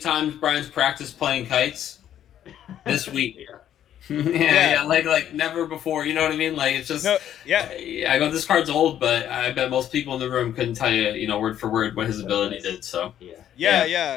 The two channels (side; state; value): right; quieter; 10.7 dB